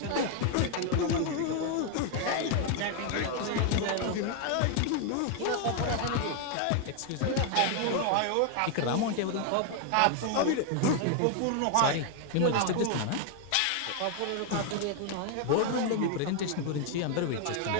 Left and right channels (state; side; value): different; both; correlation 0.00